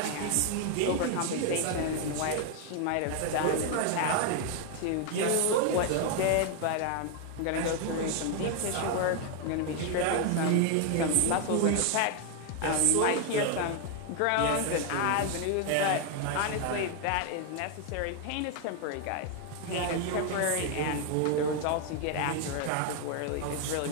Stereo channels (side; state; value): both; different; correlation 0.01